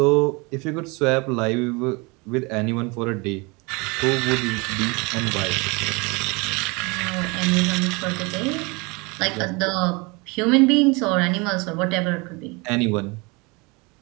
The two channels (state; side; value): quieter; left; 27.6 dB